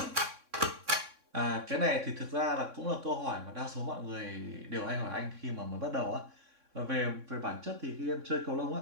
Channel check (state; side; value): late; left; 3.6 ms